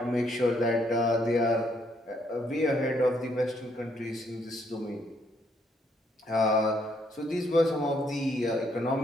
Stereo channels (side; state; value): both; normal; correlation 0.71